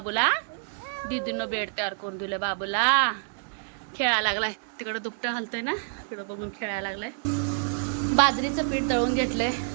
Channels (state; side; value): silent; left; 60 dB below the other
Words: दीदीनं बेड तयार करून दिलं बाबूला. खेळायला लागलाय तिकडं, दुपटं हलतंय ना, तिकडं बघून खेळायला लागलाय. बाजरीचं पीठ दळून घेतलंय,